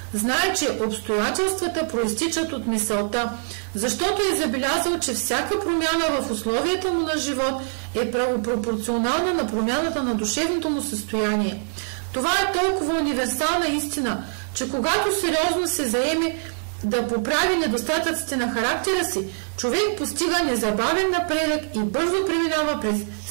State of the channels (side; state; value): left; silent; digital silence